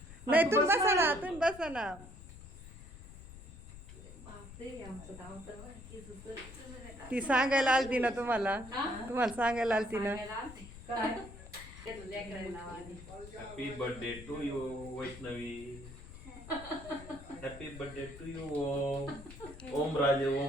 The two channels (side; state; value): left; noise; rumble, 15 dB below the sound